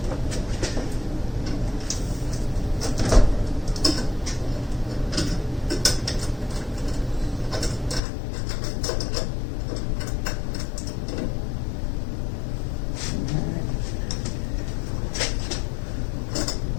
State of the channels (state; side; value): drops out; right; at 8.0 s